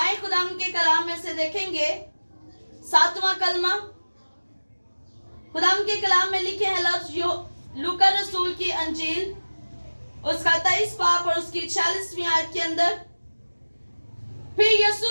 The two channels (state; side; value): inverted; both; correlation -1.00